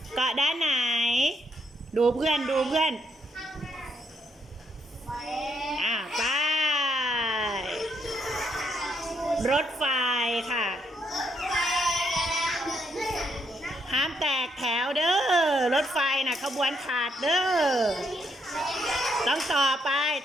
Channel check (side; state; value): both; normal; correlation 0.76